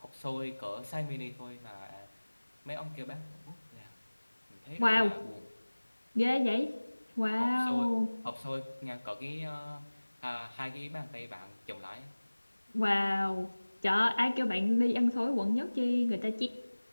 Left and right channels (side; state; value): both; inverted; correlation -1.00